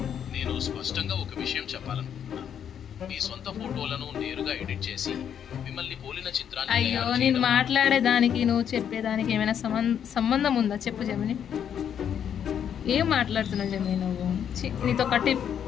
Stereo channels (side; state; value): right; quieter; 8.7 dB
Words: నేను స్పష్టంగా ఒక విషయం చెప్పాలనుకుంటున్నాను. మీ సొంత ఫోటోలను నేరుగా ఎడిట్ చేసి మిమ్మల్ని పోలిన చిత్రాన్ని అయ్యో నేను మాట్లాడేదానికి నువ్వు చెప్పేదానికి ఏమైనా సంబంధం ఉందా చెప్పు జమిని. ఏం మాట్లాడుతున్నావు జమిని నువ్వు? నీతో కట్టి